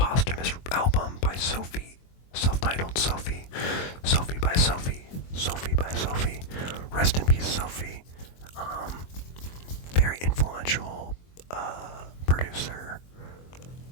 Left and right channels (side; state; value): right; late; 23 ms